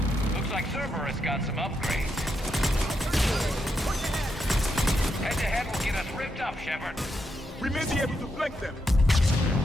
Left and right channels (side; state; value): both; normal; correlation 0.82